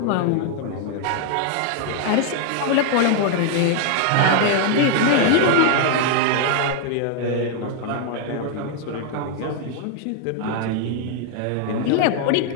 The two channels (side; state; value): both; different; correlation 0.00